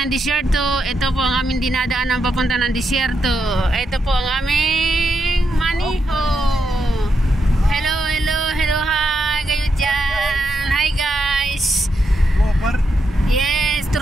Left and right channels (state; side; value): normal; both; correlation 0.83